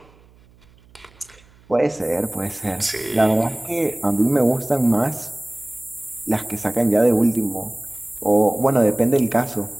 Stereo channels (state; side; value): noise; right; hum, 28 dB below the sound